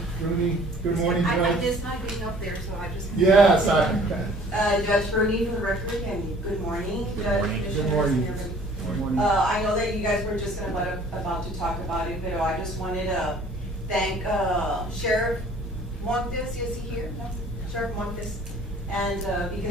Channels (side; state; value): both; normal; correlation 0.53